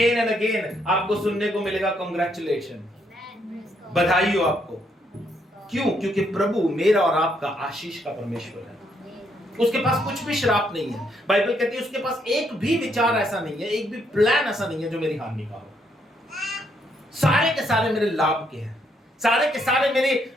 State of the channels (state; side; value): normal; both; correlation 0.74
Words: एंड अगेन आपको सुनने को मिलेगा कांग्रेचुलेशन, बधाई हो आपको। क्यों? क्योंकि प्रभु मेरा और आपका आशीष का परमेश्वर है। उसके पास कुछ भी श्राप नहीं है। बाइबल कहती है उसके पास एक भी विचार ऐसा नहीं है, एक भी प्लान ऐसा नहीं है जो मेरी हानि का हो। सारे के सारे मेरे लाभ के हैं, सारे के सारे